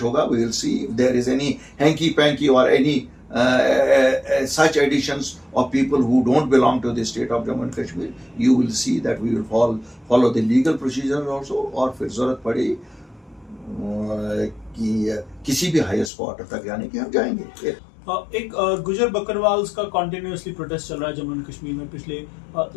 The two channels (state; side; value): drops out; right; at 16.1 s